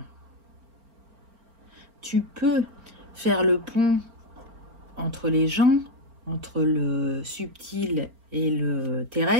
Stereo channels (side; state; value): left; late; 4.4 ms